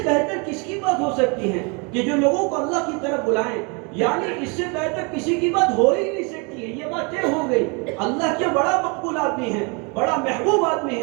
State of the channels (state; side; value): quieter; left; 31.9 dB